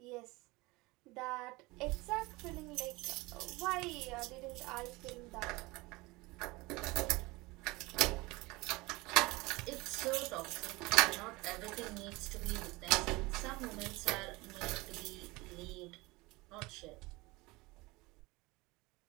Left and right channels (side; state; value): left; quieter; 22.8 dB